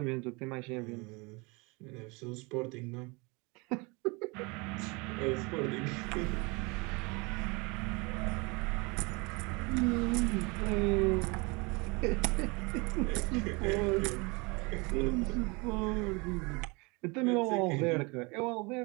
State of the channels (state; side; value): quieter; left; 28.0 dB